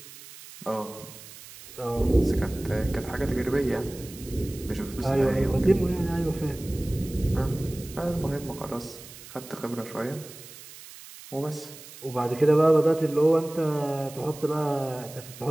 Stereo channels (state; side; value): noise; right; hiss, 17 dB below the sound